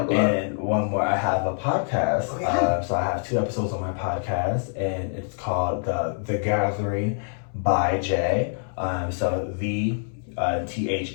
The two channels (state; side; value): silent; right; 62 dB below the other